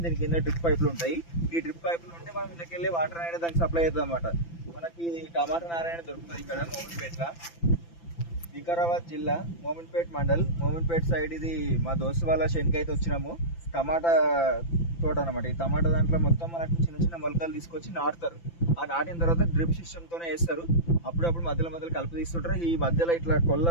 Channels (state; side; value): late; right; 5.9 ms